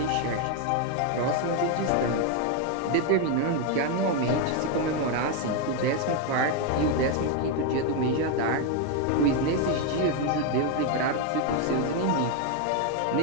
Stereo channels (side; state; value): both; different; correlation 0.01